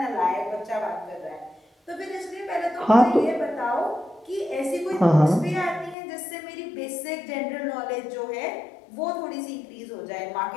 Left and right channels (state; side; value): drops out; right; at 6.0 s